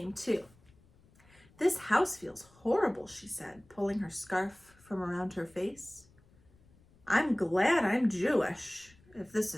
too. This house feels horrible, she said, pulling her scarf from around her face. I'm glad I'm Jewish, if this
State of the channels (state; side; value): noise; left; rumble, 29 dB below the sound